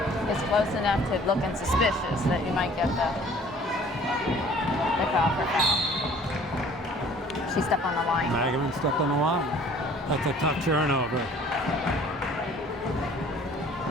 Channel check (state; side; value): normal; both; correlation 0.52